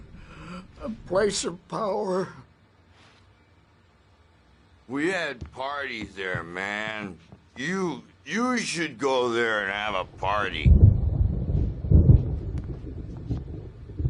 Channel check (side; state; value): both; identical; correlation 1.00